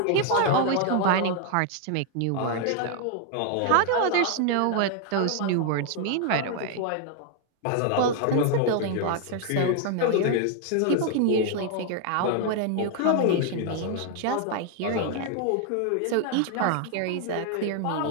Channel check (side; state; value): both; different; correlation 0.00